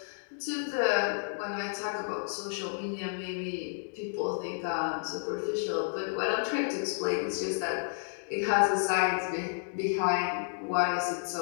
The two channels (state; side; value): silent; right; digital silence